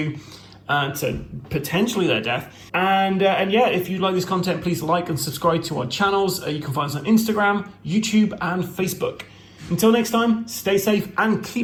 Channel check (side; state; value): both; identical; correlation 1.00